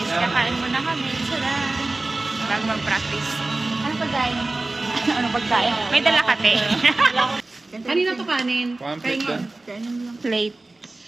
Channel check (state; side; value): quieter; left; 3.1 dB